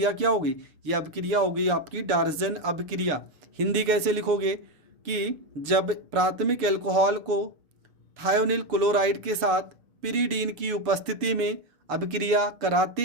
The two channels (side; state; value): left; late; 6.9 ms